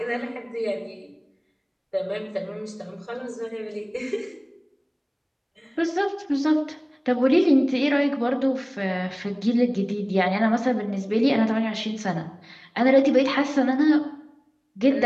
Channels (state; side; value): identical; both; correlation 1.00